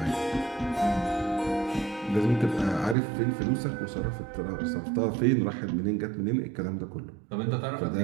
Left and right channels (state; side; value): drops out; left; at 3.0 s